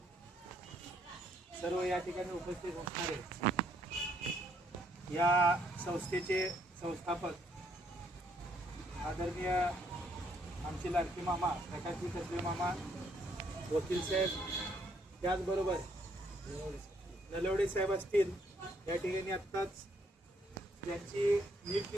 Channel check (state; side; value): normal; both; correlation 0.69